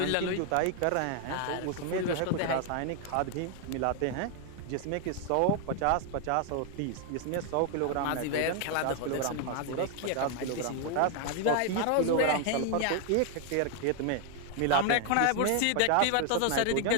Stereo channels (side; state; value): both; different; correlation 0.00